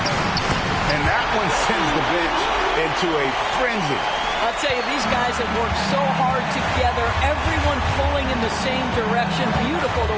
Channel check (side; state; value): both; identical; correlation 1.00